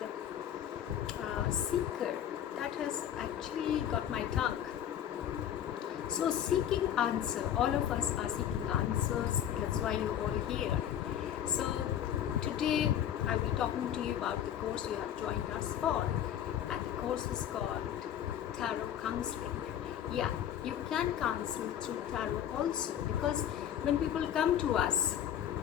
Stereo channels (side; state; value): right; quieter; 10.3 dB